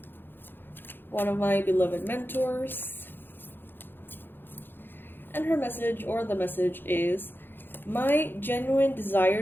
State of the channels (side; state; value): right; late; 0.099 ms